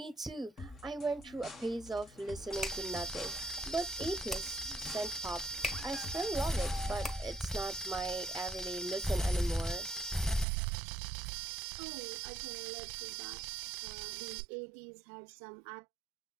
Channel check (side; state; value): left; drops out; at 10.5 s